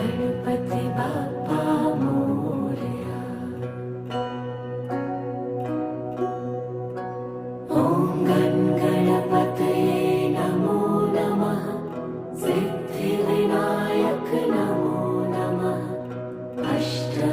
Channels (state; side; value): identical; both; correlation 1.00